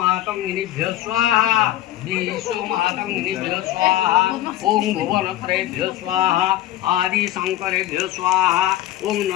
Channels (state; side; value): quieter; right; 13.9 dB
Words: स्वाहा विश्वमातंगिनीभ्यो स्वाहा ओम भुवनत्रयेभ्यो स्वाहा आदि शंकरेभ्यो स्वाहा ओम